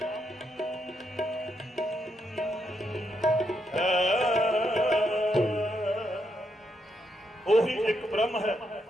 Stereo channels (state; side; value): normal; both; correlation 0.79